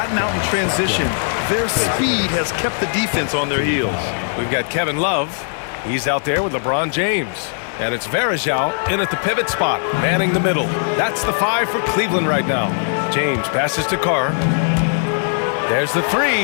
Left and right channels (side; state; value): right; silent; digital silence